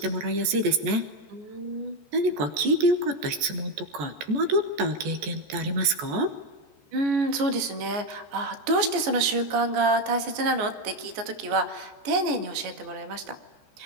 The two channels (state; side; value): late; left; 14 ms